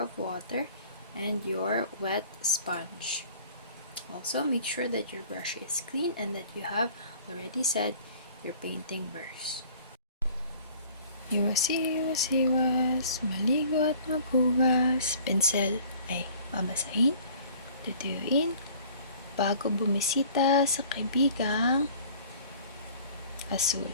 water, and your wet sponge. Also, make sure that your brush is clean and that you have already set your painting brush. Iwas, maligo at maghugas. Pinsel ay babasahin, tutuyuin, bago bumisita sa kaibigang Azul.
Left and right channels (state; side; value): inverted; both; correlation -0.50